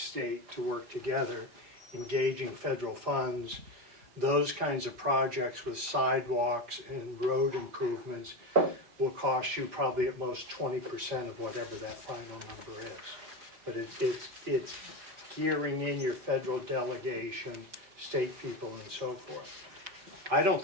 to work together, engaging federal funds, those kinds of projects with sidewalks and road improvements will cost you probably at most 20% of whatever that final number is. But it's gearing in your federal delegation, state people, and so forth. I don't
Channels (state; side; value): late; left; 5.0 ms